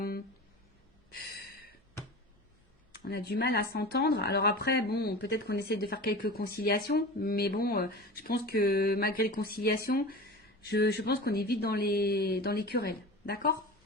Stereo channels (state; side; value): normal; both; correlation 0.33